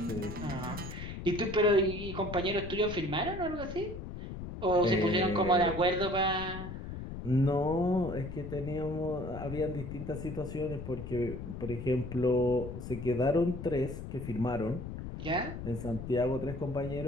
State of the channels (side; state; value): left; noise; rumble, 8 dB below the sound